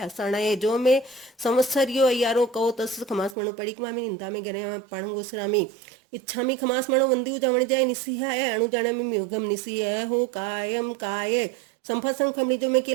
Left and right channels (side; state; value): left; drops out; at 3.4 s